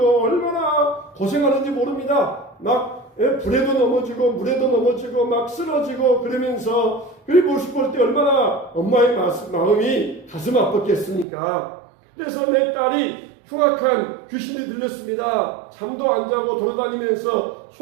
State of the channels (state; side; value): drops out; left; at 11.2 s